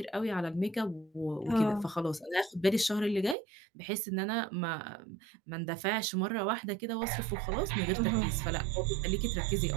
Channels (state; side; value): drops out; left; at 3.4 s